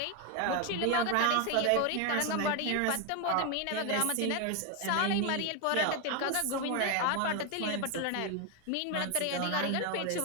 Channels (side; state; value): both; different; correlation 0.01